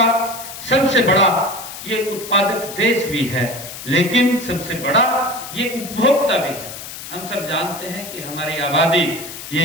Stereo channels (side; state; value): left; noise; hiss, 11 dB below the sound